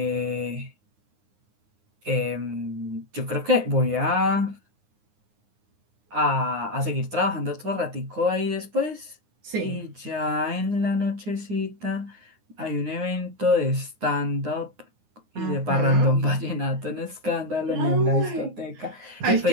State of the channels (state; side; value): late; left; 9.7 ms